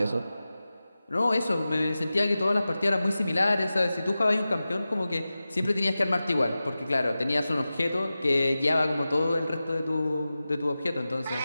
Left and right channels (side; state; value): both; inverted; correlation -0.95